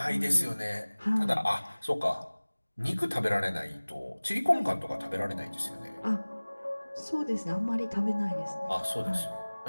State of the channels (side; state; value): both; inverted; correlation -1.00